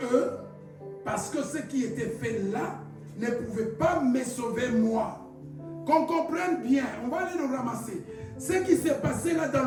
eux. Parce que ce qui était fait là ne pouvait pas me sauver moi. Qu'on comprenne bien, on va aller le ramasser. Ce qui s'est passé là dans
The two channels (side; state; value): both; identical; correlation 1.00